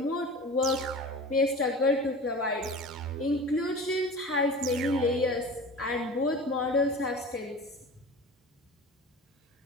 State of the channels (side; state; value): both; normal; correlation 0.36